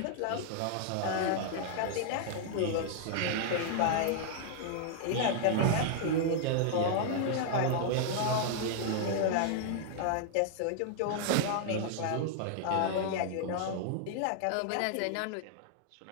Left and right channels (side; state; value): both; different; correlation -0.01